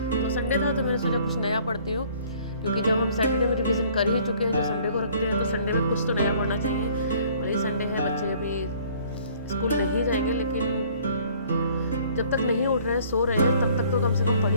तो संडे था तो मैंने सोचा कुछ नया पढ़ती हूँ, क्योंकि जब हम सैटरडे में रिवीजन कर ही चुके हैं, जो संडे को रखते हैं, तो संडे में कुछ तो नया पढ़ना चाहिए। वही संडे है, बच्चे अभी स्कूल नहीं जाएंगे, लेकिन जब तक नहीं उठ रहे हैं, सो रहे हैं, तब तक तो कम से कम पढ़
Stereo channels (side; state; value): both; inverted; correlation -0.57